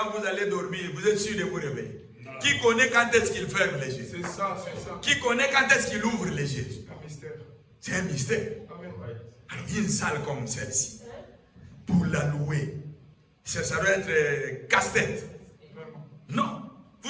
vous allez dormir, vous êtes sûr de vous réveiller? Qui connaît quand est-ce qu'il ferme les yeux? C'est ça, c'est ça. Qui connaît quand est-ce qu'il ouvre les yeux? Un mystère. C'est un mystère. Amen. Alors, une salle comme celle-ci, pour la louer, ça doit être casse-tête. Non,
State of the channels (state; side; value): identical; both; correlation 1.00